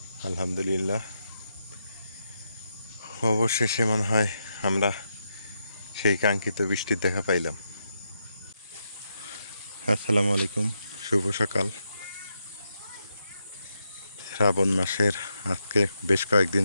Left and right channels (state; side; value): inverted; both; correlation -0.83